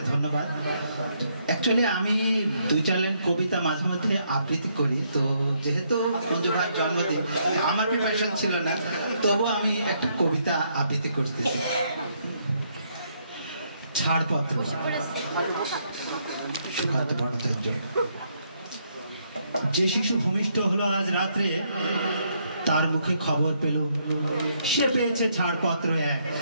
ধন্যবাদ एक्चुअली আমি দুই চার লাইন কবিতা মাঝে মধ্যে আবৃত্তি করি তো যেহেতু মঞ্জু ভাইয়ের জন্মদিন আমার প্রিপারেশন ছিল না তবু আমি একটা কবিতা আবৃত্তি করতেছি ছাড়পত্র সুকান্ত ভট্টাচার্য যে শিশু ভূমিষ্ঠ হলো আজ রাত্রে তার মুখে খবর পেল সে পেয়েছে ছাড়পত্র এক।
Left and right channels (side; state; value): both; inverted; correlation -0.73